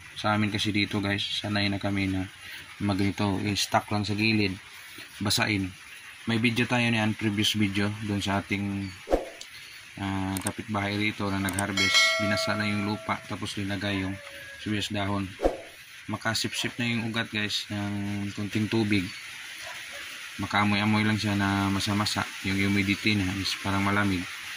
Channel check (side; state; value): both; identical; correlation 1.00